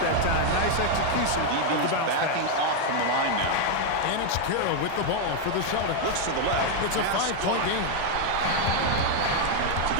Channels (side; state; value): both; different; correlation 0.00